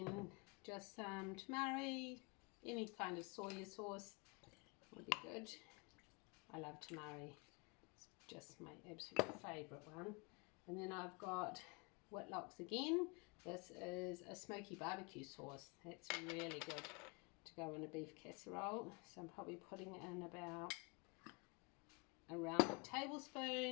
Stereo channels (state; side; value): quieter; right; 29.7 dB